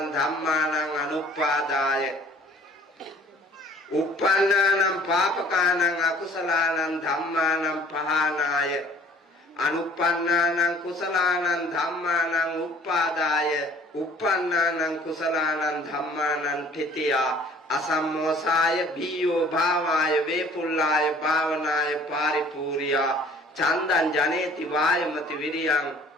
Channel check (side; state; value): both; normal; correlation 0.54